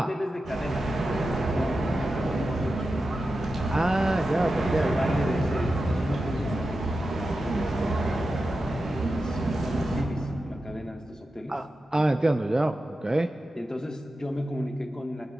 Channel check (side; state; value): both; normal; correlation 0.91